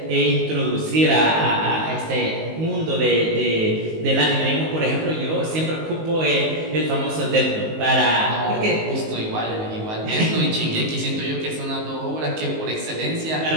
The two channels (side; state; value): left; late; 19 ms